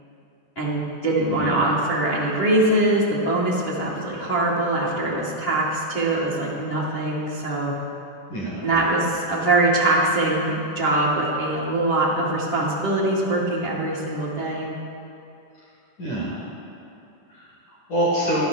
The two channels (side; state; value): right; late; 10 ms